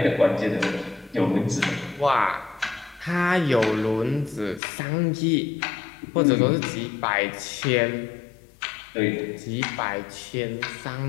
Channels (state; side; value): drops out; right; at 4.6 s